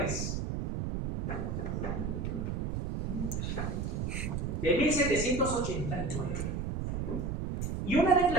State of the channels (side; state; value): right; noise; rumble, 2 dB below the sound